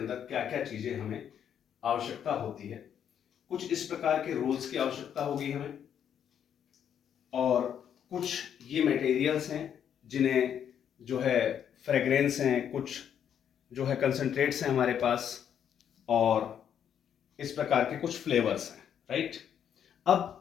क्या क्या चीज़ें हमें आवश्यकता होती है। कुछ इस प्रकार के रोल्स की आवश्यकता होगी हमें, और कुछ ये मटेरियल्स हैं जिन्हें जो है फ्रेग्रेंस हैं, कुछ जो है कंसंट्रेट्स हैं हमारे पास, और इस प्रकार के कुछ फ्लेवर्स हैं, राइट।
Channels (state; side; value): quieter; right; 8.9 dB